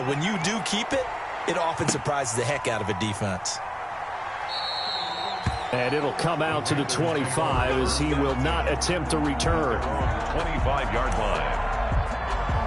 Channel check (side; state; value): both; identical; correlation 1.00